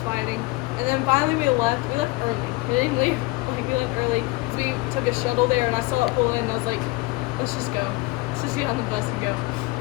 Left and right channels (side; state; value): right; quieter; 22.9 dB